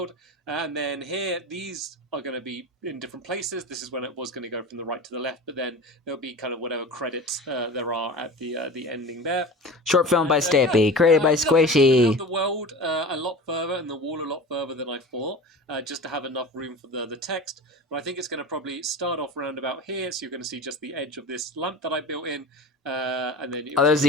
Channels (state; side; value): normal; both; correlation 0.33